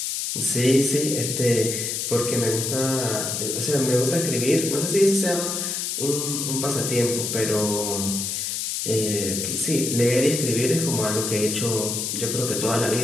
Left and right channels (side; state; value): left; noise; hiss, 2 dB below the sound